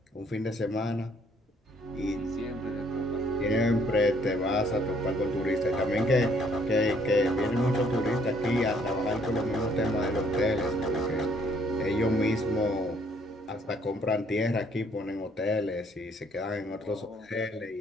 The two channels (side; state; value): both; normal; correlation 0.65